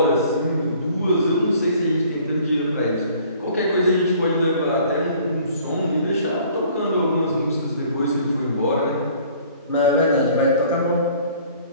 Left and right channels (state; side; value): inverted; both; correlation -0.54